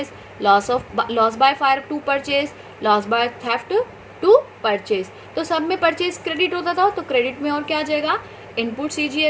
loss by fire to purchase, loss by theft to purchase. तो सब में परचेज क्रेडिट होता था, तो क्रेडिट में और क्या आ जाएगा, input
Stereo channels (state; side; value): identical; both; correlation 1.00